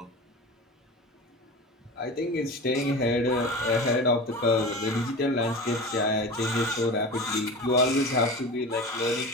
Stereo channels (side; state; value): both; normal; correlation 0.31